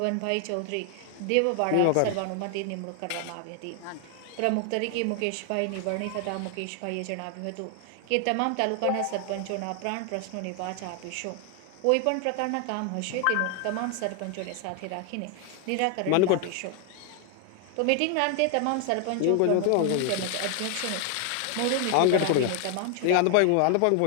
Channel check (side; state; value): both; different; correlation 0.00